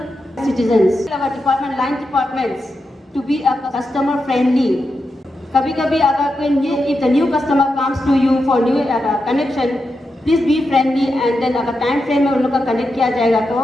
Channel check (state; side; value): normal; both; correlation 0.87